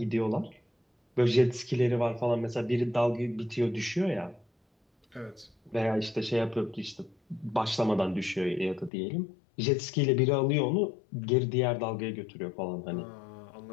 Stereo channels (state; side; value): drops out; right; at 8.9 s